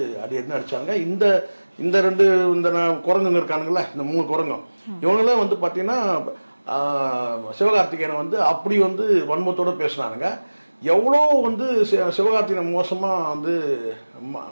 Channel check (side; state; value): both; inverted; correlation -1.00